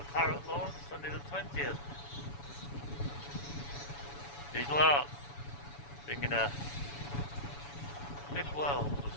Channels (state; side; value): late; right; 7.1 ms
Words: Parrot launch, Sunday the 20th. Visual arts, bringing a big world to